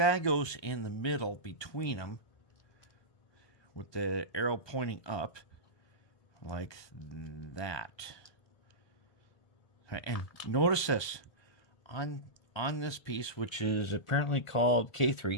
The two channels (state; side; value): late; right; 1.3 ms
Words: goes in the middle between them with the arrow pointing up like that. And notice this. On this piece, which is apparently called